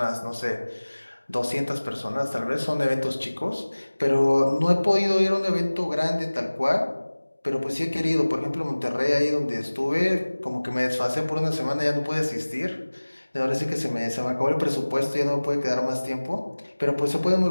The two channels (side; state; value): both; inverted; correlation -1.00